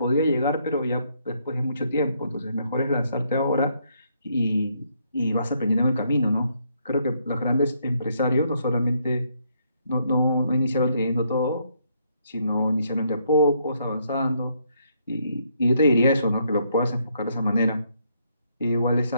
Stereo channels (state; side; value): inverted; both; correlation -0.72